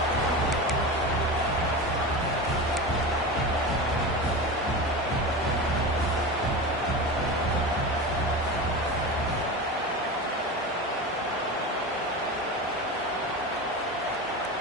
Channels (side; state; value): both; normal; correlation 0.26